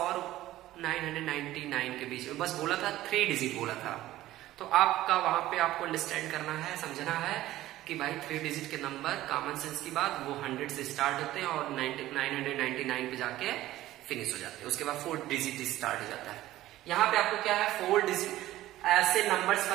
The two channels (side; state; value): left; quieter; 15.2 dB